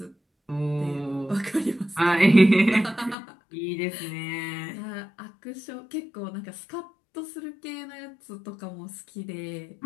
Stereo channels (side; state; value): right; drops out; at 3.2 s